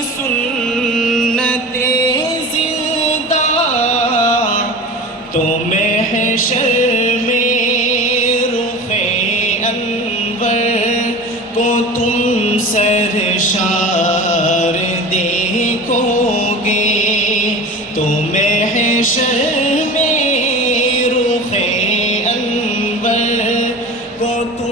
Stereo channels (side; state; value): both; normal; correlation 0.34